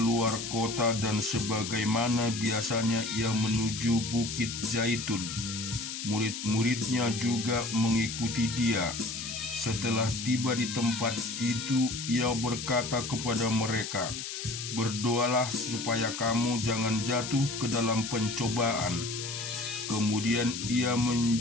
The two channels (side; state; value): left; noise; hiss, 6 dB below the sound